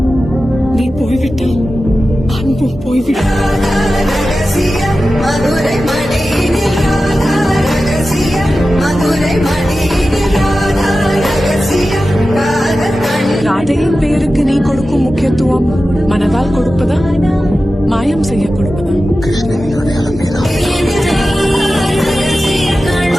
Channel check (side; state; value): both; normal; correlation 0.94